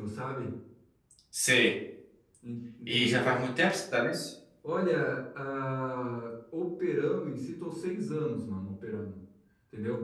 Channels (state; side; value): identical; both; correlation 1.00